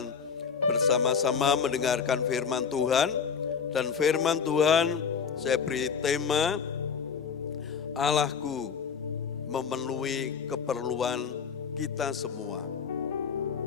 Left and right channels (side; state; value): right; quieter; 6.4 dB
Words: bersama-sama mendengarkan firman Tuhan. Dan firman Tuhan saya beri tema, Allahku memenuhi keperluan kita semua.